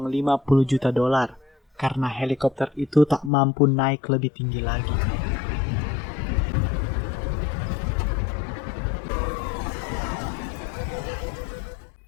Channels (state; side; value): drops out; right; at 3.3 s